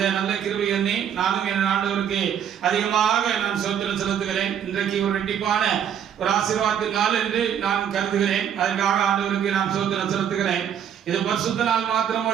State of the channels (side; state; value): left; quieter; 9.0 dB